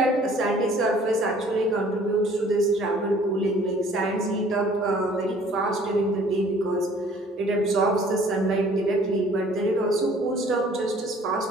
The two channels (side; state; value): both; normal; correlation 0.55